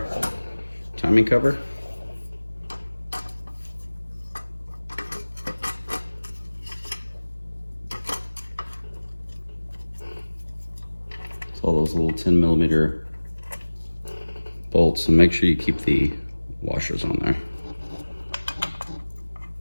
timing cover. It's all those little 10mm bolts, and make sure you keep the washers on there.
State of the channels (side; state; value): both; inverted; correlation -1.00